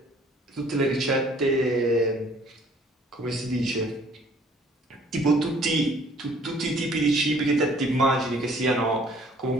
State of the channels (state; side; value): normal; both; correlation 0.57